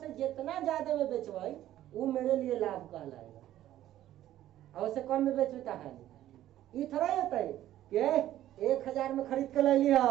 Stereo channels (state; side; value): quieter; left; 13.2 dB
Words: जितना ज्यादा में बेचवाई वो मेरे लिए लाभ कहलाएगा, और उससे कम में बेचू तो हानि। ये थोड़ा होता है कि 1000 में खरीद के ले लिया,